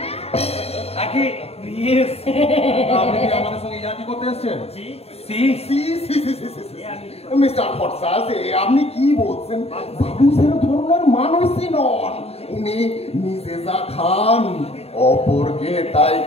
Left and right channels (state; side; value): late; right; 0.29 ms